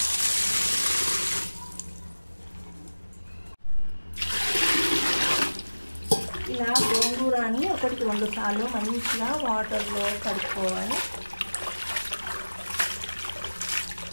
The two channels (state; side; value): inverted; both; correlation -1.00